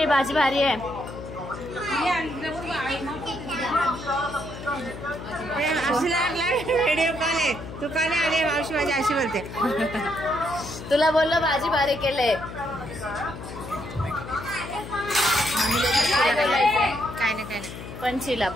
भाजी भारी आहे। व्हिडिओ कॉल आहे, तू का नाही आले? मावशी माझी अशी बोलते। तुला बोललो भाजी भारी केले। काय नाही पंचीला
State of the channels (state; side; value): noise; left; hum, 11 dB below the sound